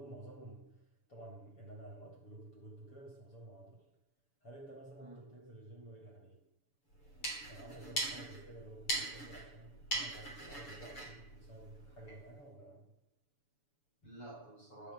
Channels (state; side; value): late; right; 7.0 ms